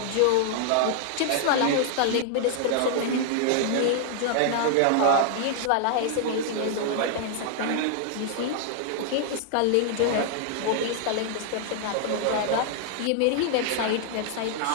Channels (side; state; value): both; different; correlation 0.00